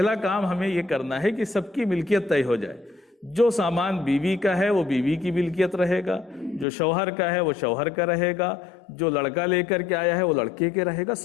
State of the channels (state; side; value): drops out; right; at 6.7 s